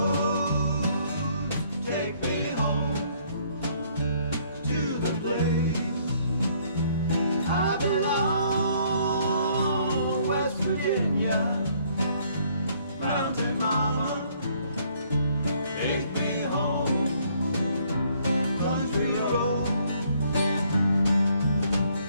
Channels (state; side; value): inverted; both; correlation -0.64